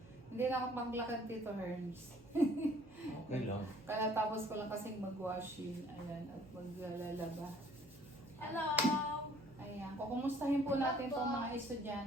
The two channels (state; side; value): noise; right; hum, 23 dB below the sound